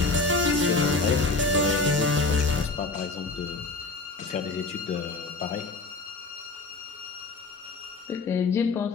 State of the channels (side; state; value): right; quieter; 3.7 dB